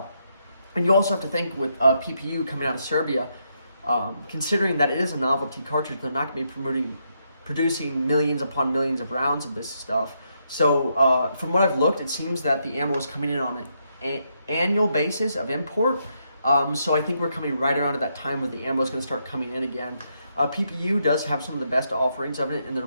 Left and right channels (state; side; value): inverted; both; correlation -0.78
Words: And you also have to think with PPU coming out of Serbia, considering that it is a novelty cartridge, they're not going to be producing millions upon millions of rounds of this stuff. So from what I've looked, it seems that the ammo is coming in on an annual basis of import. So I think we're coming right around at that time where the ammo is going to start coming in again. PPU does have some of the best offerings of it in their